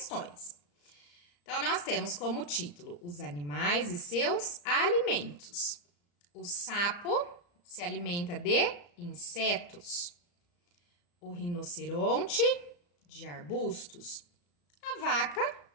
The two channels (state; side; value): late; right; 34 ms